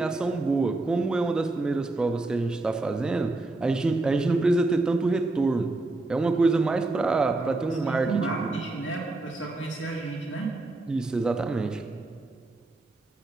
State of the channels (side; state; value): left; quieter; 3.0 dB